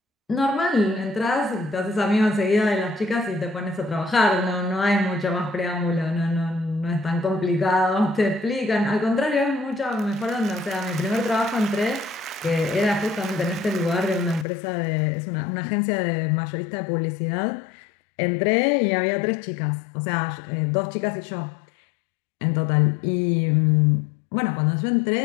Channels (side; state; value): right; drops out; at 14.5 s